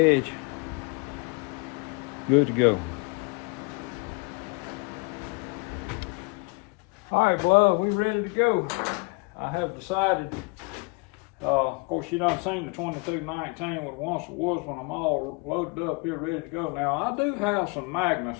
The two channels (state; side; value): quieter; right; 29.5 dB